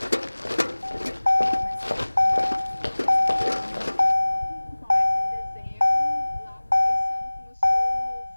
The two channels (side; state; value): both; inverted; correlation -1.00